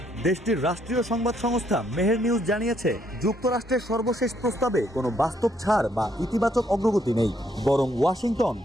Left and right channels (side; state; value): both; normal; correlation 0.71